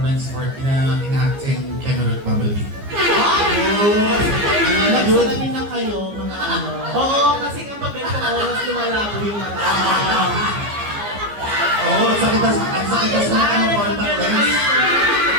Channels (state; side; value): late; left; 15 ms